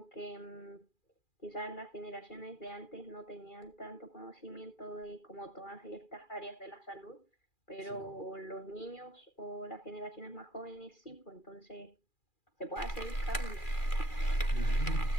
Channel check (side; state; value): right; late; 2.4 ms